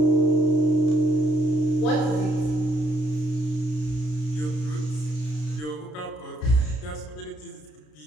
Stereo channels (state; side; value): late; right; 33 ms